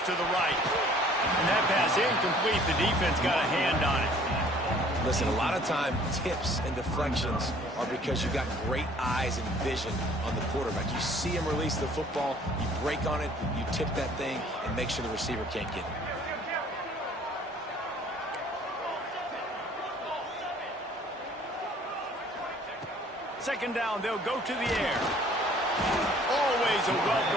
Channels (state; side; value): normal; both; correlation 0.55